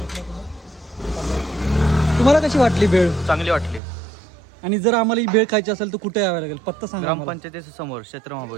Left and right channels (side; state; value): left; drops out; at 3.8 s